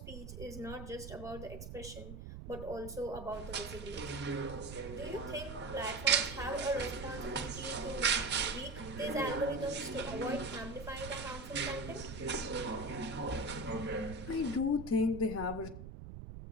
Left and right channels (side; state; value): right; noise; rumble, 10 dB below the sound